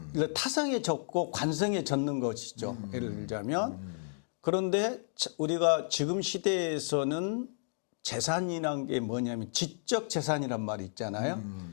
타성에 젖고 관성에 젖는 것이죠. 예를 들자면 그런데 우리가 지금 시대에서는 재산이란 게 뭐냐면 지적 재산이란 말이 있잖아요.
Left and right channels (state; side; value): silent; right; digital silence